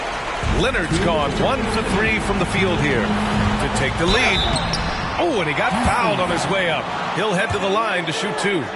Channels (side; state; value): both; identical; correlation 1.00